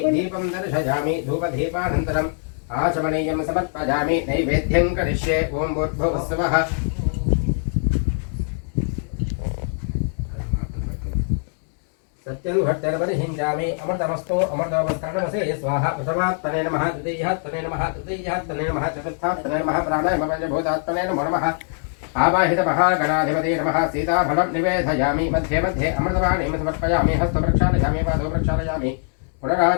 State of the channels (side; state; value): right; silent; 62 dB below the other